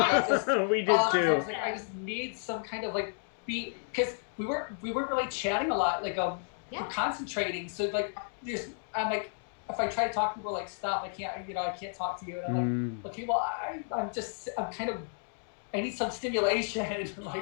just, We did I too. was I just need some kind of beat, because we weren't really chatting a lot. We're concentrating. So I'm if I try to talk to people, stop. I can't talk to you. And I'm okay, well, I'm kind of, I need some stimulation. I'd be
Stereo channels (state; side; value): silent; right; digital silence